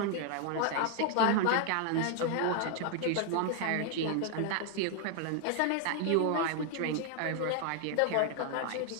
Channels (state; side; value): different; both; correlation 0.00